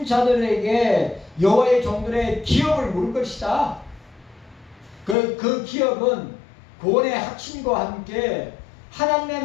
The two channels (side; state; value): right; drops out; at 5.2 s